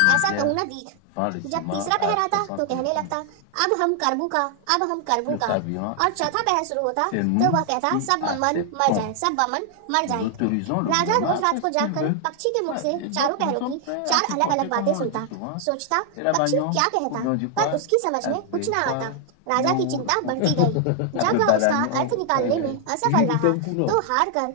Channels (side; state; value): both; different; correlation 0.00